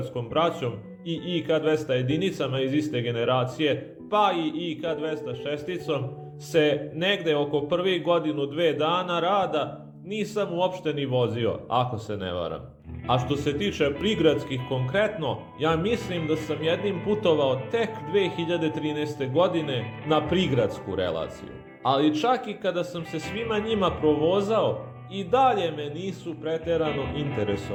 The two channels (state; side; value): identical; both; correlation 1.00